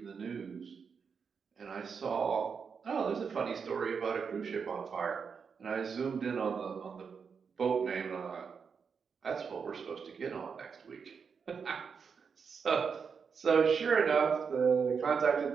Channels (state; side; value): quieter; left; 6.0 dB